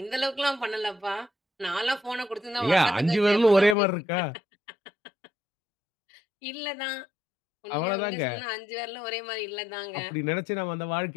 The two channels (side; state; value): right; drops out; at 3.8 s